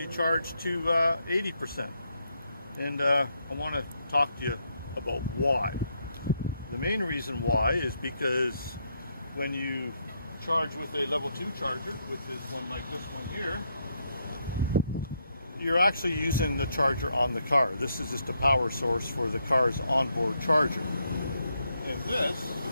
charge to 80%. And I want to talk to you about why. The main reason why is because when you charge with a level 2 charger, which is one like this one here, you're actually using the charger on the car. This is just a power source for the car's onboard charger. And this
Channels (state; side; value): inverted; both; correlation -0.77